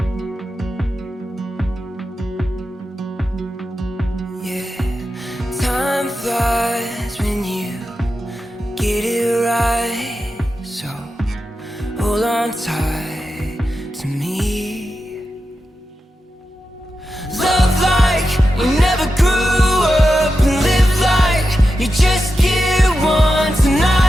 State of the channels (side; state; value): both; normal; correlation 0.90